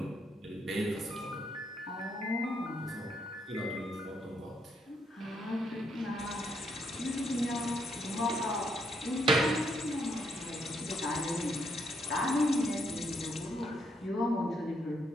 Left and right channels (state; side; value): normal; both; correlation 0.75